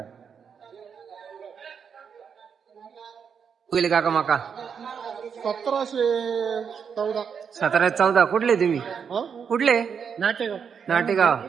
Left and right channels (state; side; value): quieter; left; 6.9 dB